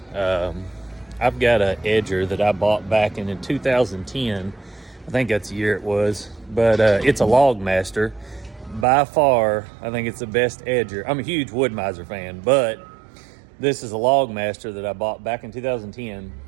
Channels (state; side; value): drops out; left; at 8.8 s